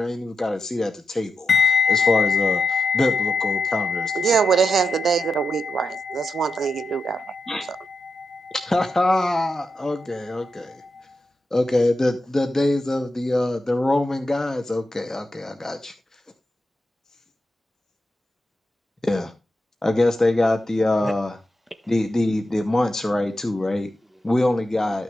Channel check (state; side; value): normal; both; correlation 0.88